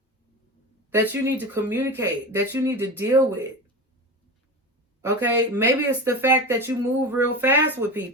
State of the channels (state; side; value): normal; both; correlation 0.26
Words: that you need to communicate, that you need to deal with. Okay? Maybe it's the fact that you move real fast with